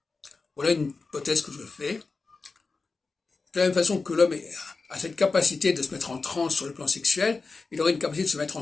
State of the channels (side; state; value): right; quieter; 4.1 dB